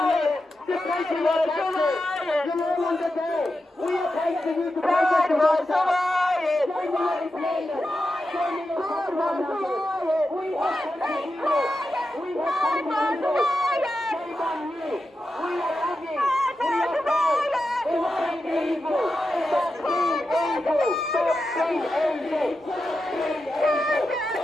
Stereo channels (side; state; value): both; normal; correlation 0.90